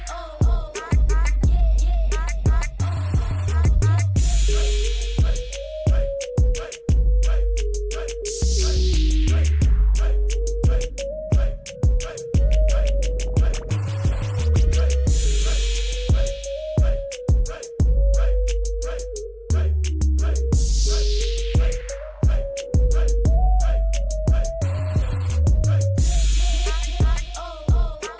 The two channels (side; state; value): both; identical; correlation 1.00